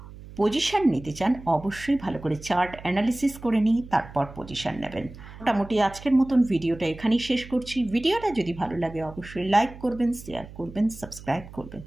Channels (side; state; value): right; noise; hum, 16 dB below the sound